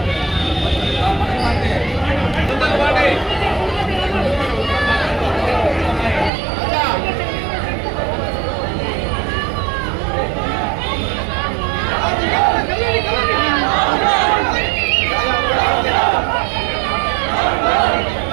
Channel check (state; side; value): drops out; left; at 6.3 s